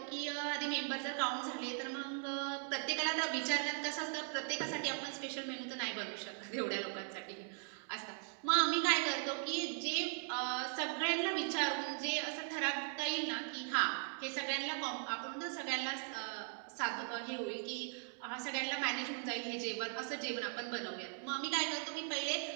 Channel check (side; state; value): left; silent; 51 dB below the other